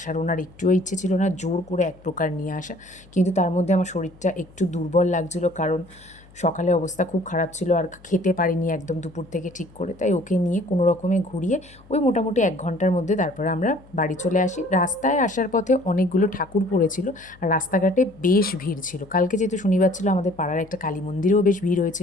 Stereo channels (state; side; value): noise; left; hum, 25 dB below the sound